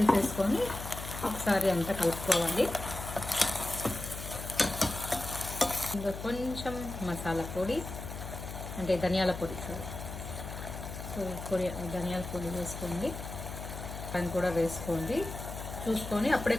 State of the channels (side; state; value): left; noise; hum, 8 dB below the sound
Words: ఒకసారి అంతా కలుపుకోవాలి. ఇంకా కొంచెం మసాలా పొడి అంటే ధనియాల పొడి, సో ధనియాల పొడి వేసుకోండి. దాన్ని కూడా వేసుకోండి చూసుకొని. అప్పుడే